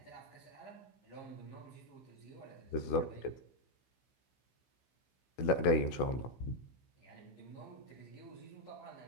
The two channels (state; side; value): late; right; 16 ms